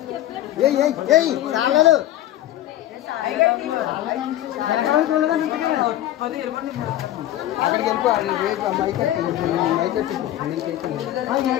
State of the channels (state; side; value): quieter; right; 13.4 dB